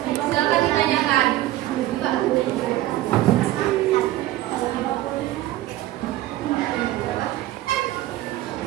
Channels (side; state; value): left; quieter; 15.2 dB